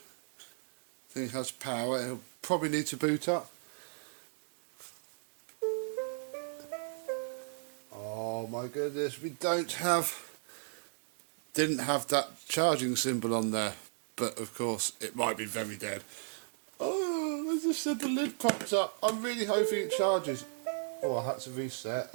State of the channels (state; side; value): silent; left; digital silence